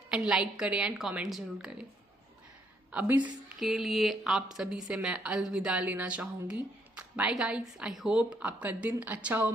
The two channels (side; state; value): both; normal; correlation 0.71